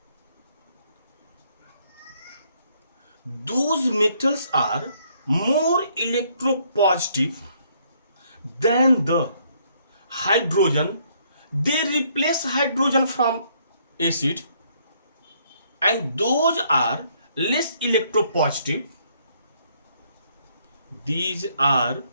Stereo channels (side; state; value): both; inverted; correlation -0.68